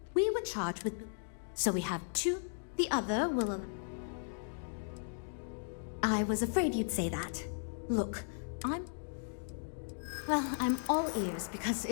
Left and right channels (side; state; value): right; silent; digital silence